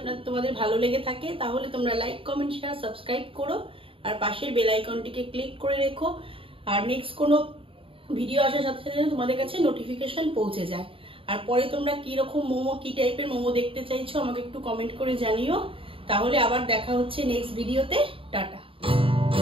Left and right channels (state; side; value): late; left; 0.26 ms